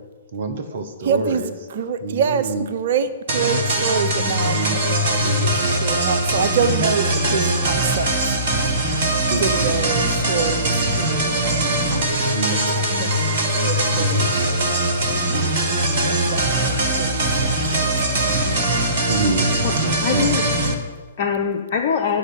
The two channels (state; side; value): inverted; both; correlation -0.43